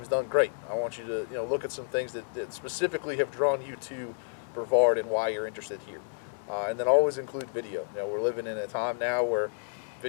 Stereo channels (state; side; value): silent; right; digital silence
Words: done great. I want you to look at some things that specifically have drawn you to Brevard and why you're interested here. And then always include video. We're living in a time now where